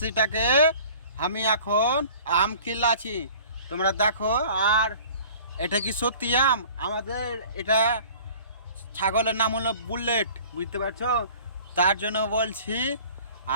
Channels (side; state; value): both; inverted; correlation -0.47